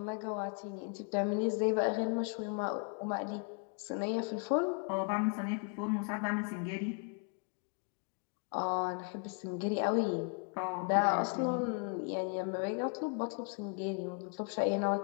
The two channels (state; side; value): quieter; right; 37.8 dB